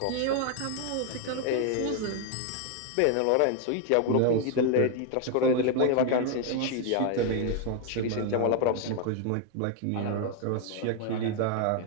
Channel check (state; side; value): different; both; correlation 0.00